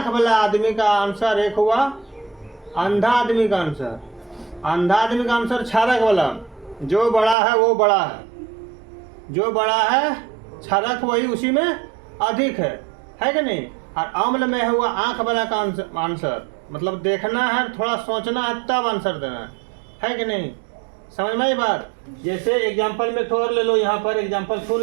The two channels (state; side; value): drops out; left; at 7.4 s